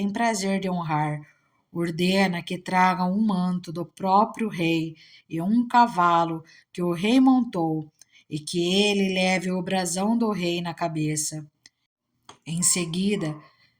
prazer de honrar, ordena que tragam um manto do próprio rei e um cavalo que o rei montou, e que ele leve o brasão do rei na cabeça. Em seguida,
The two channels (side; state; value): both; identical; correlation 1.00